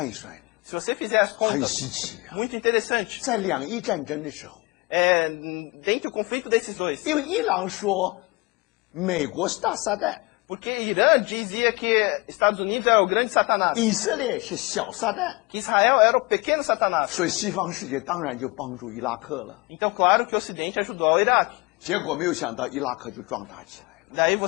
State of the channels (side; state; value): right; quieter; 25.7 dB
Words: 一算， Se você fizer as 很 contas, 稀奇啊！ muito interessante. 在两伊战争的时候， Dentro do conflito desses dois. 因为伊朗说美国是大撒旦， Porque Irã dizia que Estados Unidos era o grande Satanás. 以色列是小撒旦， Que Israel era o pequeno Satanás. 所以西方世界当然就帮助伊拉克了。 Então, claro que o Ocidente ajudou ao Iraque. 结果没有想到伊拉克就壮大起来了。 Daí